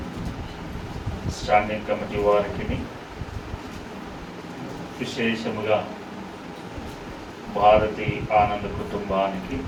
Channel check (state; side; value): identical; both; correlation 1.00